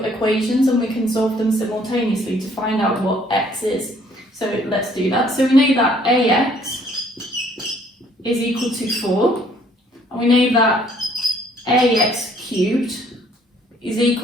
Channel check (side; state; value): both; normal; correlation 0.62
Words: equations and we can solve them simultaneously to find out what x is. So let's do that. So we know that ax is equal to 4, and we know that ax cubed is